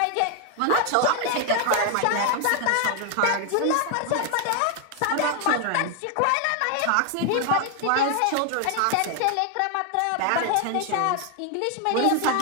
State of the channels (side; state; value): both; different; correlation 0.00